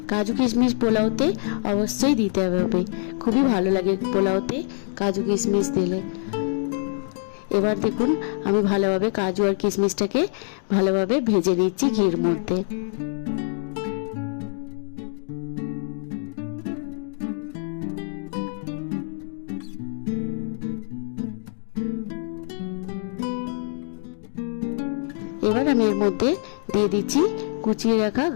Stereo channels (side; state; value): right; silent; digital silence